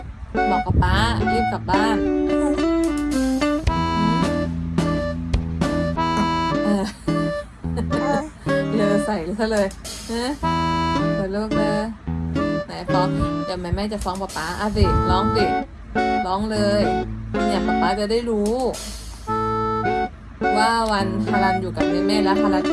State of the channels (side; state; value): both; identical; correlation 1.00